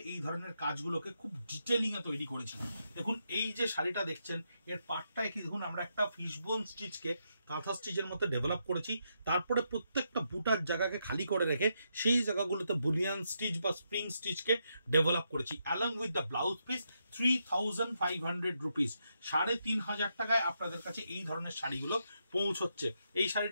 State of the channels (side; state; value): both; inverted; correlation -0.81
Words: এই ধরনের কাজগুলোকে খুব ডিটেলিং এ তৈরি করেছিলাম। দেখুন, এই যে শাড়িটা দেখছেন, এর পাটটায় কি দেখুন আমরা একটা ফিশবোন স্টিচকে কাঁথা স্টিচের মতো ডেভেলপ করেছি। তারপরে প্রত্যেকটা বুটার জায়গাকে খালি করে রেখে সেই জায়গাগুলোতে বুলিয়ান স্টিচ বা স্প্রিং স্টিচকে ডেভেলপ করেছি। Along with the blouse piece 3500 rupees, 3500 টাকায় আপনাদের কাছে এই ধরনের শাড়িগুলো পৌঁছচ্ছে। এই